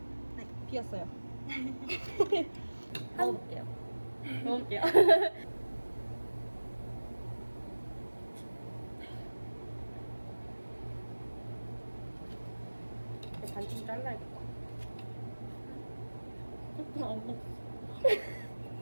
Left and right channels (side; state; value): both; inverted; correlation -1.00